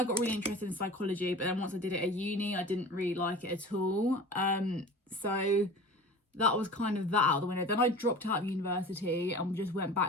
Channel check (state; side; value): normal; both; correlation 0.38